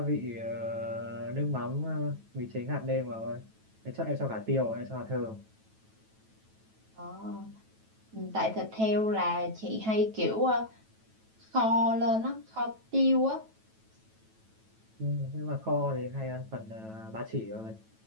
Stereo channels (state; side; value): late; left; 9.1 ms